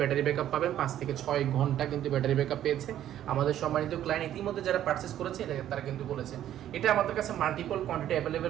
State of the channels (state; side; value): quieter; left; 11.6 dB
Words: ব্যাকআপ পাবেন 5 থেকে 6 ঘন্টা কিন্তু ব্যাটারি ব্যাকআপ পেয়েছে। আমাদের সম্মানিত ক্লায়েন্ট ইতিমধ্যে যারা পারচেস করেছে এটা তারা কিন্তু বলেছে। এটা আমাদের কাছে মাল্টিপল কোয়ান্টিটি